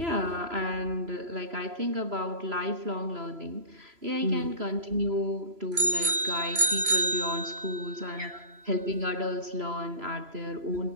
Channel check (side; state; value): left; late; 3.0 ms